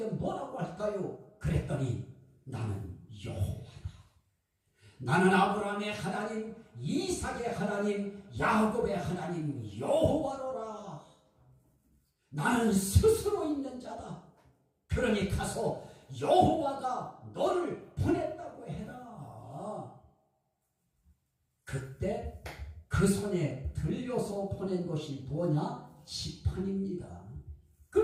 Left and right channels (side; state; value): both; identical; correlation 1.00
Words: 뭐라고 할까요? 그랬더니 나는 여호와다. 나는 아브라함의 하나님, 이삭의 하나님, 야곱의 하나님 여호와로라. 나는 스스로 있는 자다. 그러니 가서 여호와가 너를 보냈다고 해라. 그때 그 손에 들려서 보낸 것이 뭐냐? 지팡이입니다.